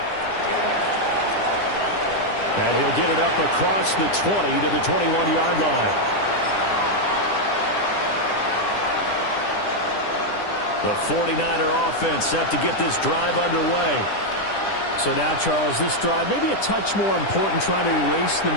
And he'll get it up across the 20 to the 21-yard line. The 49er offense set to get this drive underway. So now, Charles, this drive maybe a touch more important, trying to erase the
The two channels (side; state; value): right; late; 10 ms